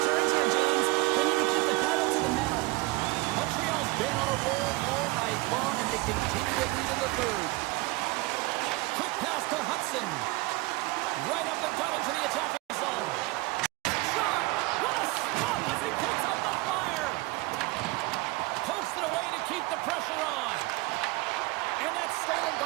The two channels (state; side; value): quieter; left; 22.5 dB